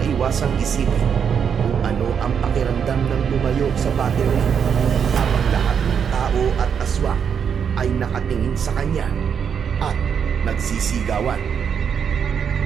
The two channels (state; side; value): quieter; left; 7.3 dB